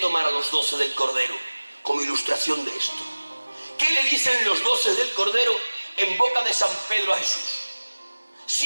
a los 12 del Cordero como ilustración de esto. ¿Qué le dicen los 12 del Cordero en boca de San Pedro a Jesús?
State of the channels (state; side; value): inverted; both; correlation -1.00